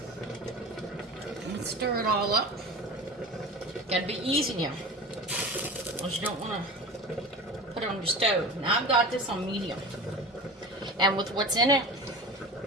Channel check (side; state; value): both; normal; correlation 0.33